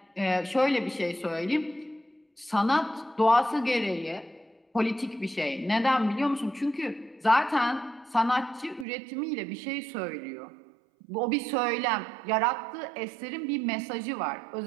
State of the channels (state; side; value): drops out; left; at 8.8 s